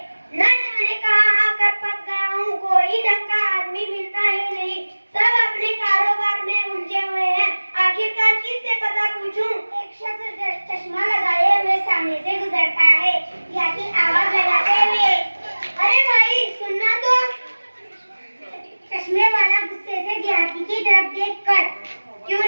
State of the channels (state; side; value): inverted; both; correlation -1.00